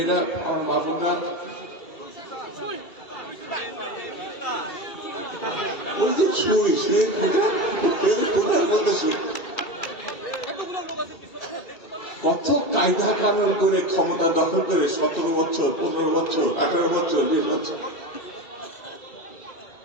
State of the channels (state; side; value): late; right; 2.3 ms